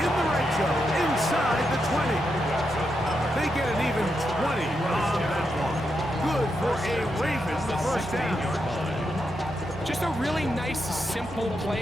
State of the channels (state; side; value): normal; both; correlation 0.84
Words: the right zone, inside the 20. They get an even 20 on that one. Good for a Ravens 1st down. Just a really nice, simple